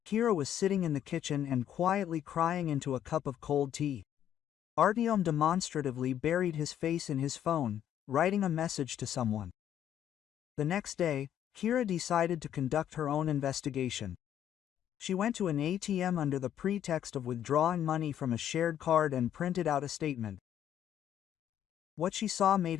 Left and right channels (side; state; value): right; quieter; 10.4 dB